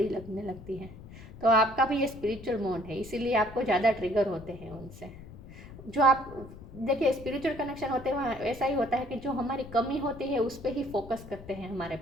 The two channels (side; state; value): left; noise; rumble, 16 dB below the sound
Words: लगने लगती है। तो आपका भी ये स्पिरिचुअल मोड है, इसीलिए आपको ज़्यादा ट्रिगर होते हैं उनसे। जो आप देखिए, स्पिरिचुअल कनेक्शन होते हैं वहाँ ऐसा ही होता है कि जो हमारी कमी होती है उस पर ही फोकस करते हैं हमारे